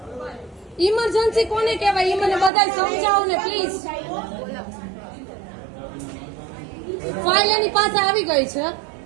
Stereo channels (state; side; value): drops out; left; at 2.5 s